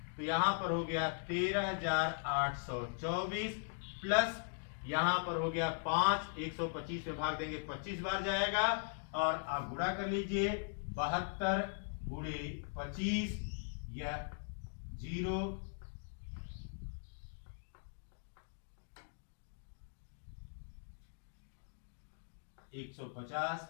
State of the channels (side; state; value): right; silent; digital silence